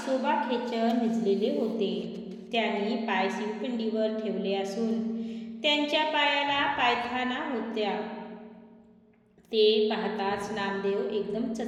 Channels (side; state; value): both; identical; correlation 1.00